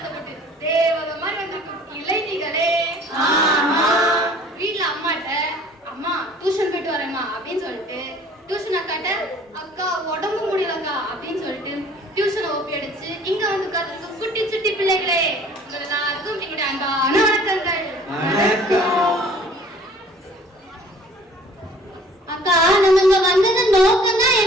தேவத மாதிரி வந்திருக்கும் இளைஞர்களே, வீட்டுல அம்மாட்ட அம்மா டியூஷன் போயிட்டு வரேம்மா அப்படின்னு சொல்லிட்டு டியூஷன் அக்காட்ட அக்கா உடம்பு முடியலக்கா அப்படின்னு சொல்லிட்டு டியூஷனை ஒப்பி அடிச்சு இங்க வந்து உட்கார்ந்து குட்டி சுட்டி பிள்ளைகளே, எல்லாருக்கும் எங்களுடைய அன்பான வணக்கங்கள். அக்கா, நம்ம இங்க வந்தது நோக்கம் தான்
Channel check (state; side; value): normal; both; correlation 0.51